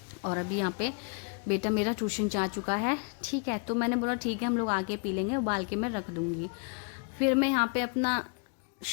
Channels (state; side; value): quieter; right; 36.1 dB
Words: और अभी यहाँ पे बेटा मेरा ट्यूशन जा चुका है, ठीक है। तो मैंने बोला ठीक है, हम लोग आके पी लेंगे, उबाल के मैं रख दूँगी। फिर मैं यहाँ पे अपना